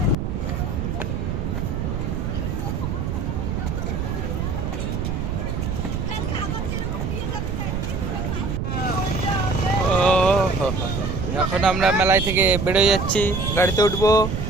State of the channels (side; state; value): right; noise; rumble, 2 dB below the sound